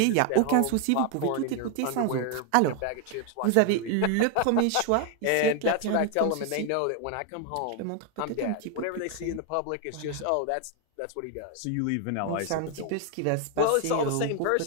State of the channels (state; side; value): different; both; correlation 0.01